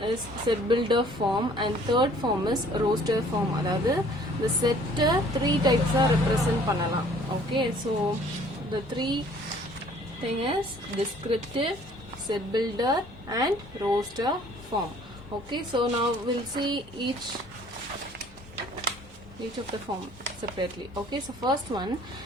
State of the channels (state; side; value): normal; both; correlation 0.55